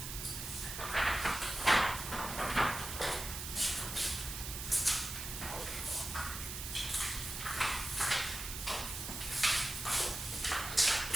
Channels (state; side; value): noise; right; hiss, 6 dB below the sound